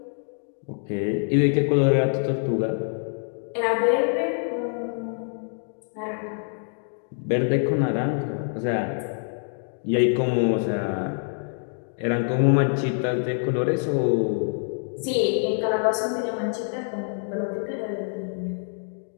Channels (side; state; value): right; silent; 61 dB below the other